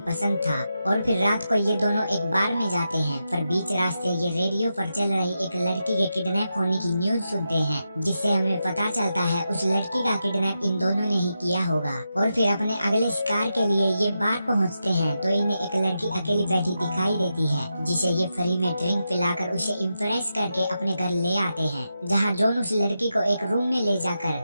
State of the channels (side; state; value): both; inverted; correlation -0.87